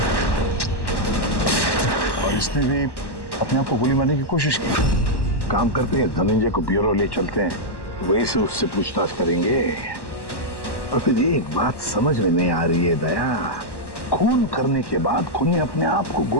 और इसने भी अपने आप को गोली मारने की कोशिश की। काम करते हैं, धनंजय को ब्यूरो ले चलते हैं, वहीं से उससे पूछताछ करेंगे। और फिर एक बात समझ में नहीं आ रही है दया, खून करने के बाद खूनी अपने आप को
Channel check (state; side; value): late; right; 1.1 ms